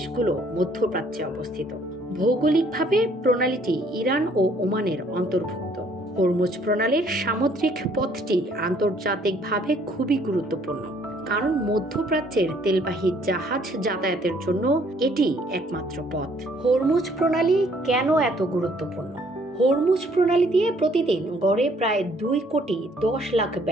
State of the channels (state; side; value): normal; both; correlation 0.63